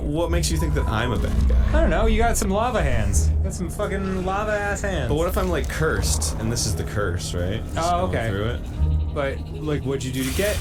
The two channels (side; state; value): both; identical; correlation 1.00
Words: makes you think that I'm a bad guy? I don't know. You got some lava hands. You got some fucking lava ass hands. But what if I'm like cursed, and this is the curse, right? Just Oh, going okay. Through it. But like, what'd you do to get